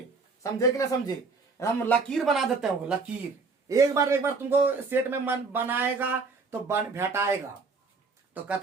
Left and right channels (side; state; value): left; quieter; 4.3 dB